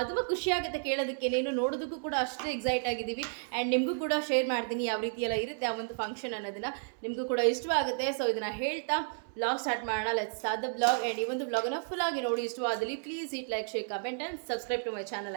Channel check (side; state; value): left; silent; 56 dB below the other